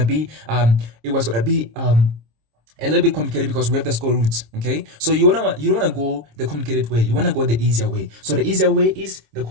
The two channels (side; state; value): left; late; 26 ms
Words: be a little bit complicated because we have the square roots. Okay, so you don't want to go the complicated way, you want to go the easier way. So the easier way is the